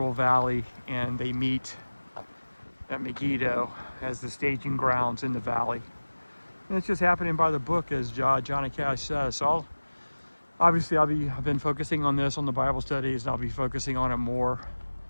Valley, and they meet at Megiddo as the staging grounds in the valley. And it's just happening by the book, as Johnny Cash says. So I've been focusing on this on the Bible studies, and I'll be focusing on it more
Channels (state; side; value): inverted; both; correlation -1.00